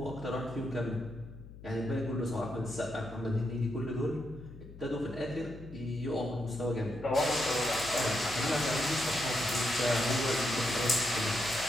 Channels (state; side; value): noise; left; hum, 16 dB below the sound